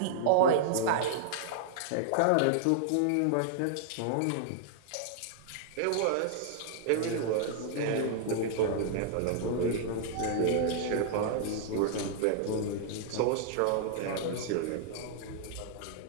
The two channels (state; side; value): different; both; correlation -0.01